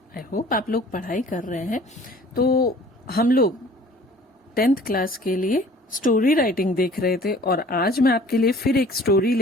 आई होप आप लोग पढ़ाई कर रहे हैं। तो हम लोग 10th क्लास के लिए स्टोरी राइटिंग देख रहे थे और आज मैं आपके लिए फिर एक स्टोरी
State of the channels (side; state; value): both; normal; correlation 0.50